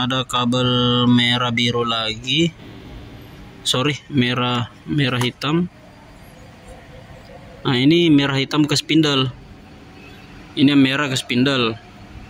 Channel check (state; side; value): identical; both; correlation 1.00